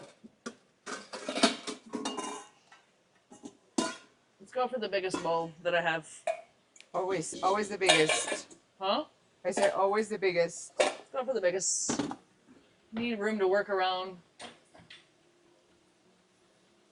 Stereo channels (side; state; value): both; identical; correlation 1.00